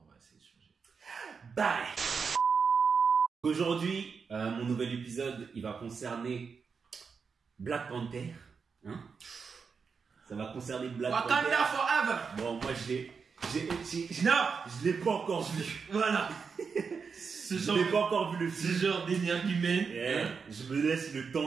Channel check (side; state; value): left; quieter; 5.6 dB